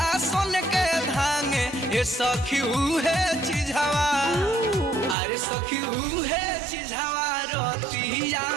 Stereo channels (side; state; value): left; drops out; at 5.2 s